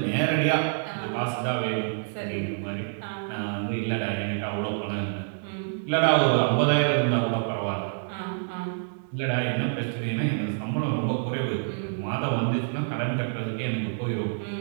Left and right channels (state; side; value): silent; left; digital silence